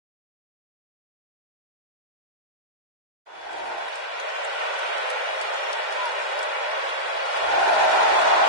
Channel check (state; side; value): late; left; 2.1 ms